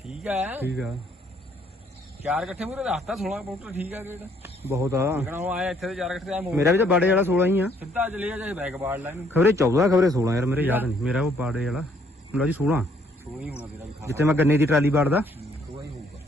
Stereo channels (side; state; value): both; normal; correlation 0.66